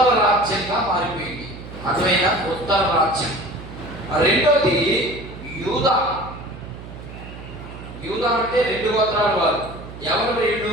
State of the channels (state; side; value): noise; right; hum, 13 dB below the sound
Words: రాజ్యంగా మారిపోయింది. అర్థమైనా? ఉత్తర రాజ్యం. రెండోది యూదా. యూదా అంటే 2 గోత్రాల వారు. ఎవరు